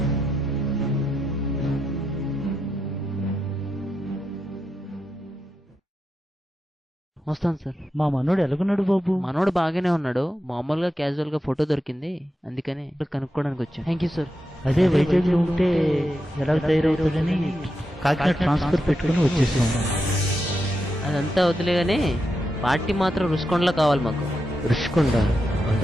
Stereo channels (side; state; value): both; normal; correlation 0.86